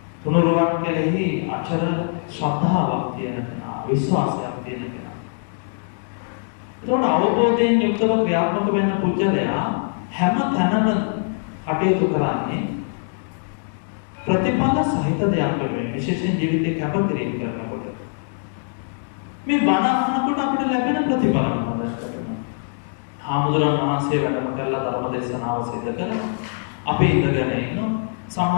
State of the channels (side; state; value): right; silent; digital silence